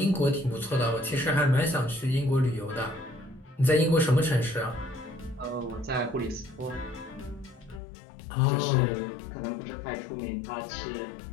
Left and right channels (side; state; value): right; drops out; at 7.8 s